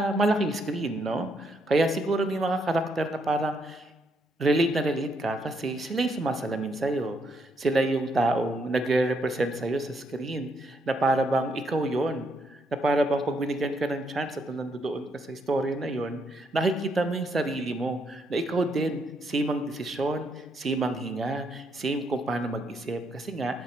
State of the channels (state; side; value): normal; both; correlation 0.75